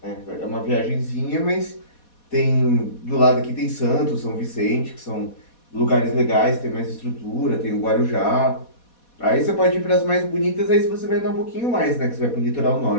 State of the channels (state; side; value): late; right; 4.2 ms